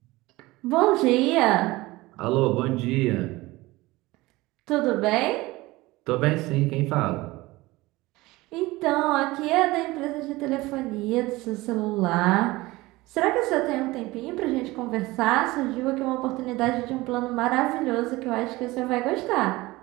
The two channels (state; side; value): quieter; left; 20.2 dB